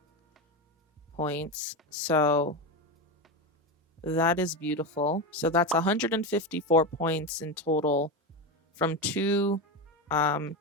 points. So that is beautiful. So that's 154 points in total from two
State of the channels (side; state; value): both; normal; correlation 0.17